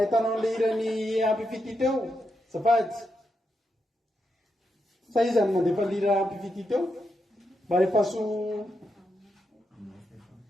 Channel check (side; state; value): both; normal; correlation 0.84